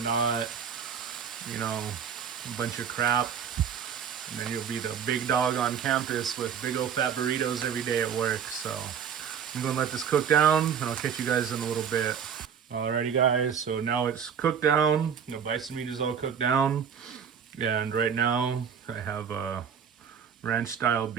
not, you know, a bunch of crap. And then you'll be the big dog on campus with big old fat burritos every day at work. So I'm going to let this cook down, and I'll catch you guys in a little bit. Alrighty guys, so now it's cooked down. You know, bison meat is all cooked down. And right now I have ranch style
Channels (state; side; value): quieter; left; 7.5 dB